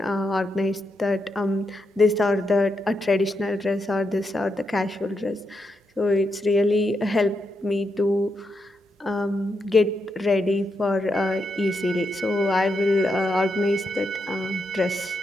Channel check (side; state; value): both; normal; correlation 0.83